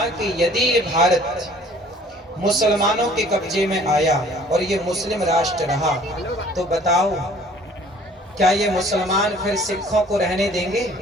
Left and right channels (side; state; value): both; normal; correlation 0.54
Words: कि यदि ये भारत मुसलमानों के कब्जे में आया और ये मुस्लिम राष्ट्र रहा, तो बताओ क्या ये मुसलमान फिर सिखों को रहने देंगे?